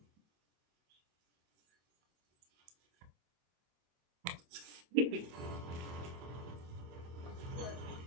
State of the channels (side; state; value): left; late; 24 ms